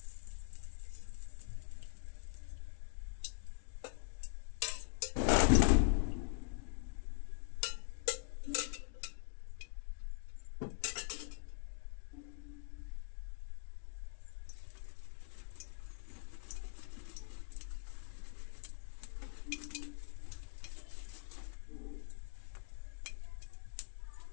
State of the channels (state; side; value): silent; right; digital silence